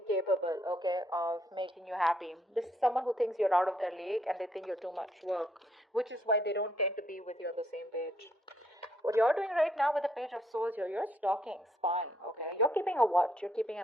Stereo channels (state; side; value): normal; both; correlation 0.71